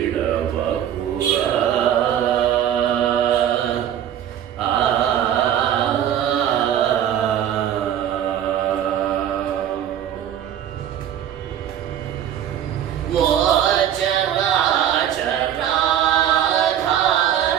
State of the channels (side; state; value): left; quieter; 10.3 dB